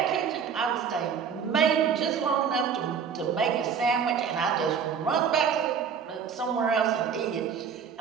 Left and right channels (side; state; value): left; quieter; 6.9 dB